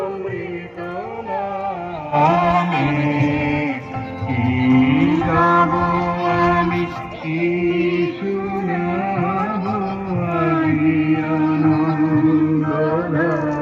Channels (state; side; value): identical; both; correlation 1.00